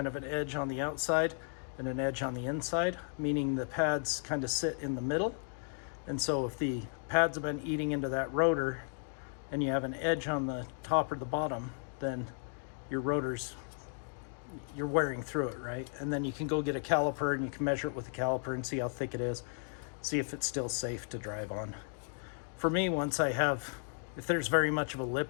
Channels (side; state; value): right; silent; 55 dB below the other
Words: of an edge on the outside and an edge on the inside, meaning the pads kind of sit in the middle. And so if the pads have been eating into that rotor and you have an edge on the top or the bottom, then your rotor's, you're wearing through it, right? And then you can go get a caliper and you can measure it with a caliper and see how thick it is, see if it's still safe to drive on. For me, once I have, if there's very much of a